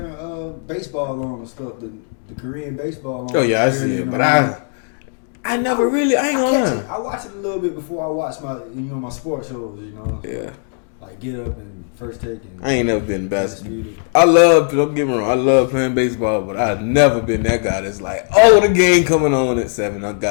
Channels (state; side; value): silent; right; 61 dB below the other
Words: baseball on and stuff, the Korean baseball on. Oh yeah, early in the morning. I never really. I ain't catch gonna it. I watch it a little bit before I watch my sports shows. You know. So yeah. Like Get Up and First Take and. I ain't never been basketball. Undisputed. Don't get me wrong. I love playing baseball, but I've never been that guy that's like, the game coming on at 7. I